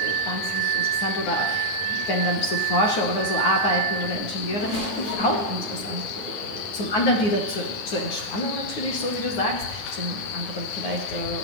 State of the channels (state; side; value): late; right; 9.5 ms